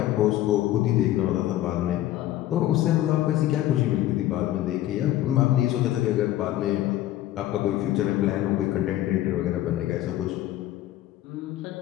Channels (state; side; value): quieter; right; 14.1 dB